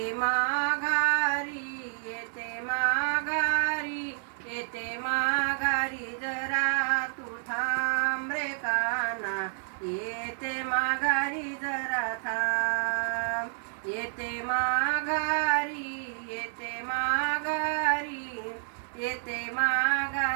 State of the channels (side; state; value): left; silent; digital silence